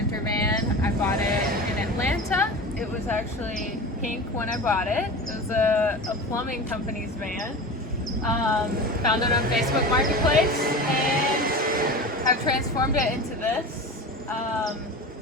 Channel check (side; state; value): both; normal; correlation 0.31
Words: van. I bought it in Atlanta. It was actually pink when I bought it. It was a plumbing company's van. Found it on Facebook Marketplace and I've transformed it into this.